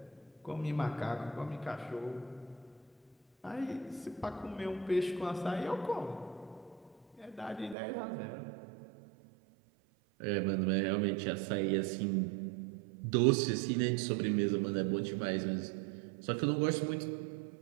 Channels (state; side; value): drops out; left; at 7.8 s